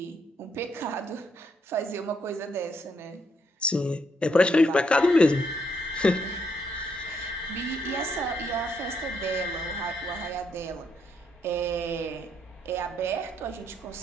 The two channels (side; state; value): both; normal; correlation 0.74